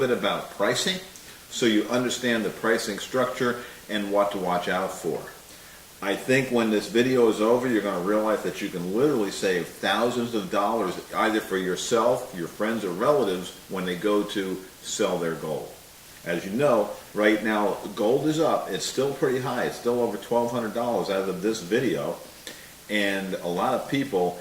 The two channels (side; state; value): both; identical; correlation 1.00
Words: about pricing so you understand the pricing structure and what to watch out for. I think when this video is over, you're going to realize that you can literally save thousands of dollars either for yourself, your friends, or relatives when they go to sell their gold. As you know, right now gold is up. It's still pretty high. It's still over $1,200 as of this video. And a lot of people,